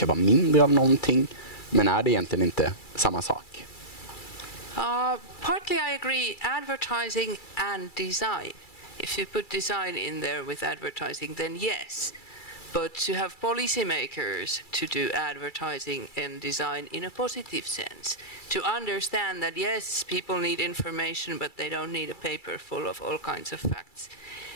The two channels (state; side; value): late; right; 2.3 ms